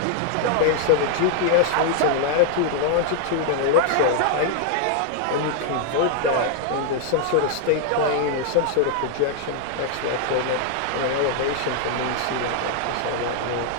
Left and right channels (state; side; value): different; both; correlation 0.00